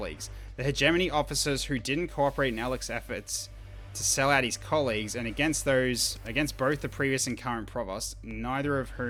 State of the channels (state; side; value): identical; both; correlation 1.00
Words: The hegemony officers who didn't cooperate in Alec's efforts to sell out his colleagues, and against both the previous and current provost, neither of